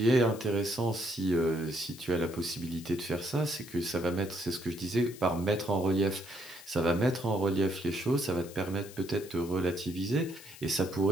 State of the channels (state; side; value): noise; left; hiss, 18 dB below the sound